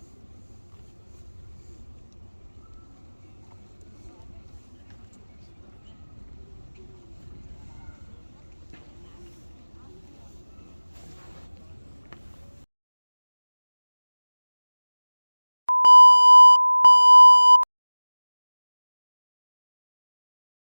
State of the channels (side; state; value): both; inverted; correlation -1.00